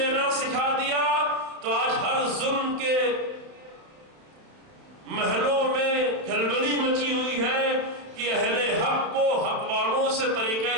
سکھا دیا تو آج ہر ظلم کے محلوں میں کھلبلی مچی ہوئی ہے کہ اہل حق کو حق والوں سے طریقہ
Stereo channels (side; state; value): left; late; 31 ms